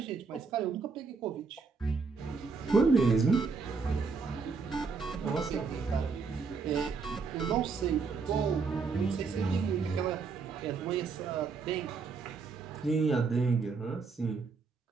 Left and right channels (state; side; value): quieter; left; 4.9 dB